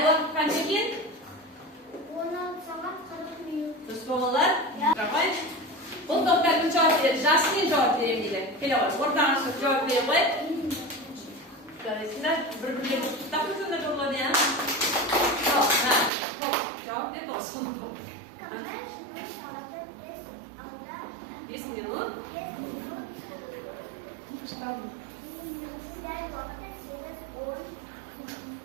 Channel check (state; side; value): drops out; left; at 16.1 s